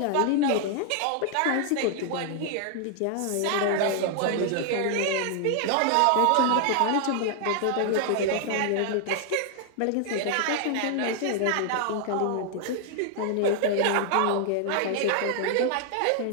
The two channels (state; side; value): different; both; correlation 0.00